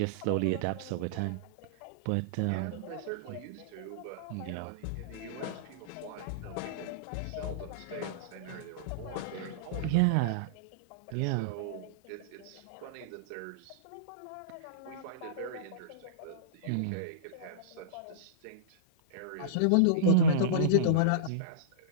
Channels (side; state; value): both; different; correlation -0.04